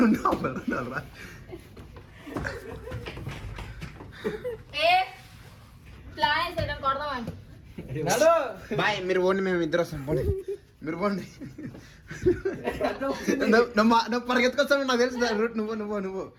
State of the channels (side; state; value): both; identical; correlation 1.00